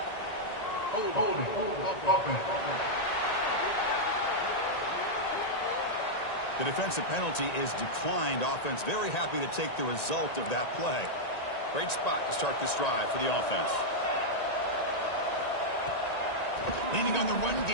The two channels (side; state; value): right; late; 1.9 ms